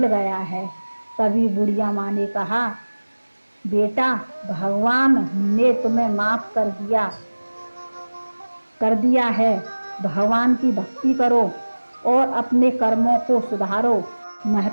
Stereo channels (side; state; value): both; inverted; correlation -1.00